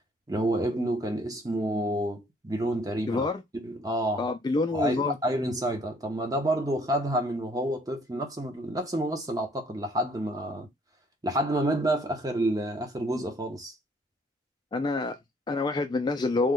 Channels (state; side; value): normal; both; correlation 0.62